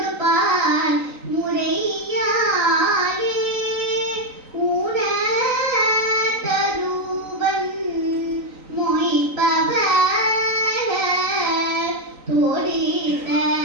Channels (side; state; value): left; late; 3.9 ms